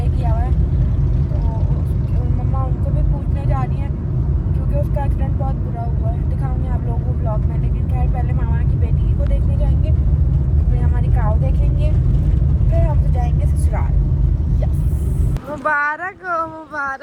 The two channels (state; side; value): identical; both; correlation 1.00